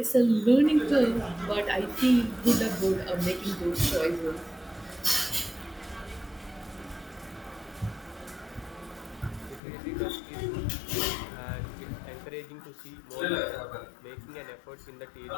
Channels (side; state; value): right; drops out; at 9.6 s